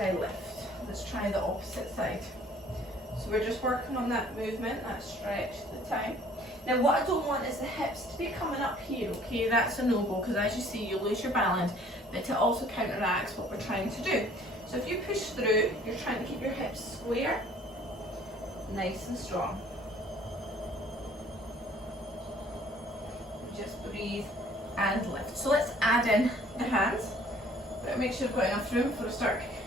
I lift. Let's try the opposite side. So we're just working on that movement, that stretch at the time. Now what I don't want is the hips to be coming up here, okay? That's a no-go, because as you see, you lose your balance, but it also counteracts what we're trying to do. So if you push through, you're trying to keep your hips square, nice and strong. Just breathe and lift. So let's add in the hands. But make sure I've got enough room before I start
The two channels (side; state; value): both; normal; correlation 0.56